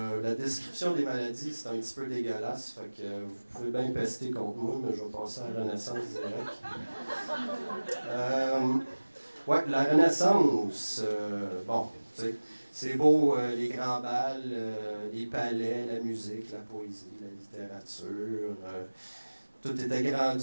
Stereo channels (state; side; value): inverted; both; correlation -1.00